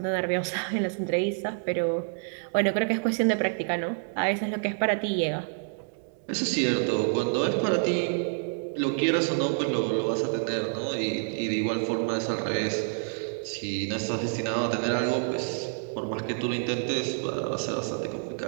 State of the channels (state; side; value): silent; left; digital silence